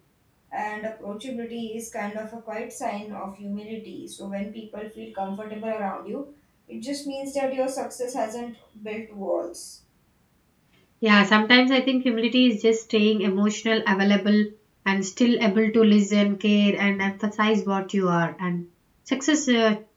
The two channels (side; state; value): both; identical; correlation 1.00